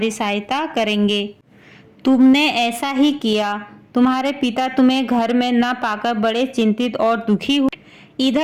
सहायता करेंगे। तुमने ऐसा ही किया। तुम्हारे पिता तुम्हें घर में न पाकर बड़े चिंतित और दुखी हुए।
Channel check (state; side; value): identical; both; correlation 1.00